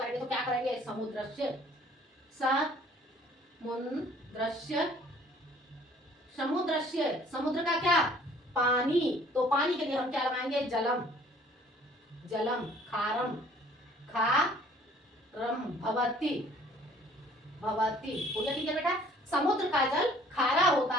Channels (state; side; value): normal; both; correlation 0.56